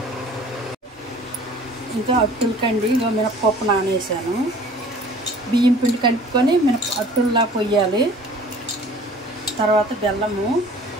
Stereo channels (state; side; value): normal; both; correlation 0.49